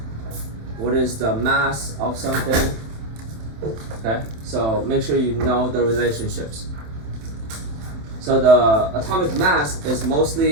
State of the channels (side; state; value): left; late; 27 ms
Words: what is the mass of something. Okay, so make sure you know the relationships. So the atomic mass is